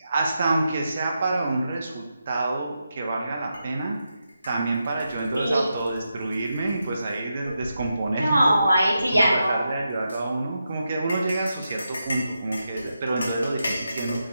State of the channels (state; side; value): inverted; both; correlation -0.86